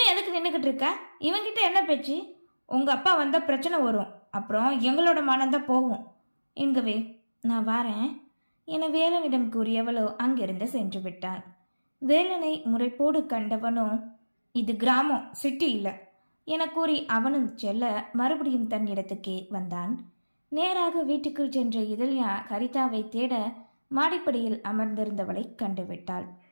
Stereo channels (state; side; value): inverted; both; correlation -1.00